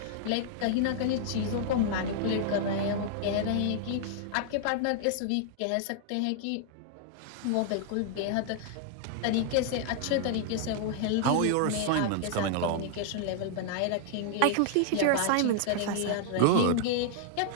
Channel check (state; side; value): different; both; correlation -0.01